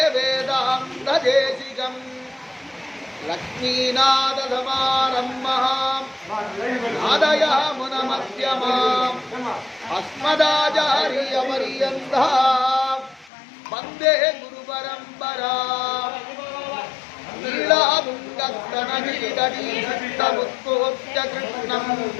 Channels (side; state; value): right; drops out; at 13.3 s